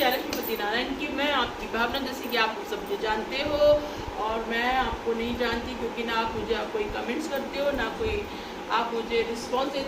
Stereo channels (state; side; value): identical; both; correlation 1.00